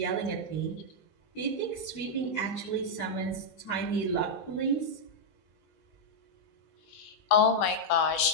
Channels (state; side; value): late; right; 20 ms